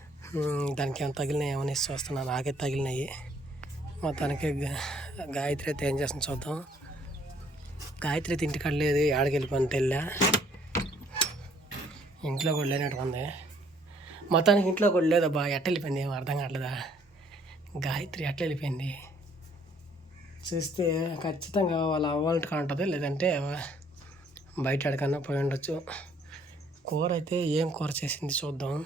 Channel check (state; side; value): normal; both; correlation 0.63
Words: దానికి ఏమైనా తగిలినాయి ఏమని చూస్తున్నాను. నాకే తగిలినాయి. మొత్తానికి గాయత్రి అయితే ఏం చేస్తుంది చూద్దాం. గాయత్రి అయితే ఇంటికాడ లేదు, ఆడికి వెళ్ళిపోయిన తెల్లా. ఇంట్లో కూడా లేనట్టు ఉంది. మొత్తానికి ఇంట్లో కూడా లేదబ్బా. ఎట్ట వెళ్ళిపోయింది ఏమో అర్థం కావట్లేదా. గాయత్రి ఎట్లా వెళ్ళిపోయింది చూస్తే ఖచ్చితంగా వాళ్ళ అవ్వాలంటే ఉంటుంది, లేదంటే బయట ఎక్కడికన్నా పోయి ఉండొచ్చు. కూర అయితే ఏం కూర చేసింది చూద్దాం.